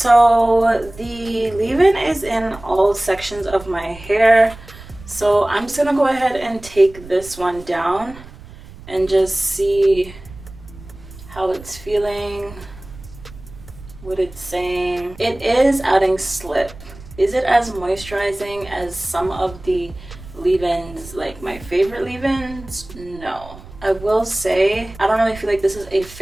the leave-in is in all sections of my hair, so I'm just gonna go ahead and take this one down and just see how it's feeling, what it's saying. It is adding slip. Is it as moisturizing as some of the leave-ins, like my favorite leave-ins? No. I will say I don't really feel like this is a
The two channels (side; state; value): right; noise; rumble, 18 dB below the sound